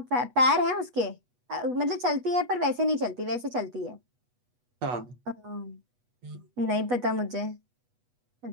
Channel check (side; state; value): left; late; 8.2 ms